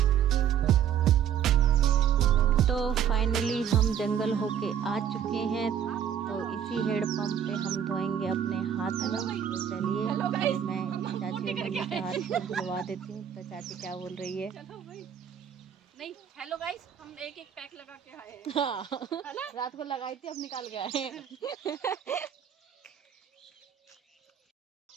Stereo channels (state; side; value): quieter; left; 8.9 dB